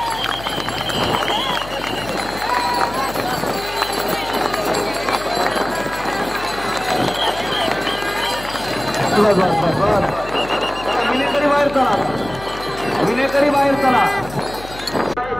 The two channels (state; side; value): noise; left; hum, 15 dB below the sound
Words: विनेकरी बाहेर चला. विनेकरी बाहेर चला.